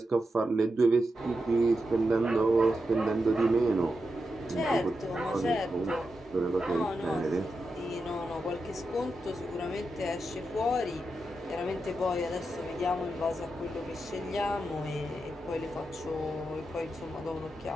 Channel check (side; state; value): both; normal; correlation 0.88